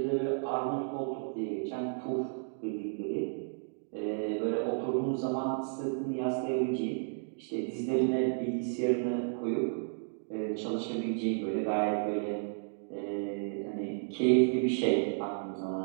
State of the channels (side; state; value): left; silent; digital silence